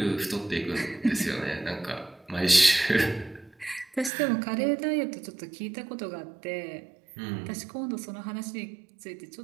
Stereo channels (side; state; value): left; drops out; at 4.1 s